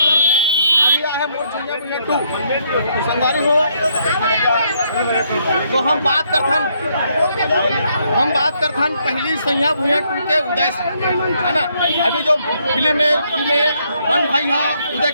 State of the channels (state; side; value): inverted; both; correlation -0.72